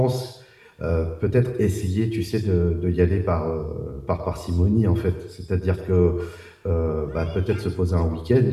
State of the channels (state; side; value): identical; both; correlation 1.00